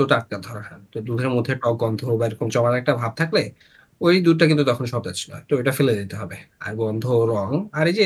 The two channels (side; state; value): both; identical; correlation 1.00